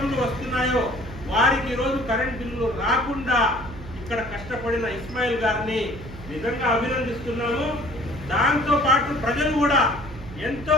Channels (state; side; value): noise; right; hum, 14 dB below the sound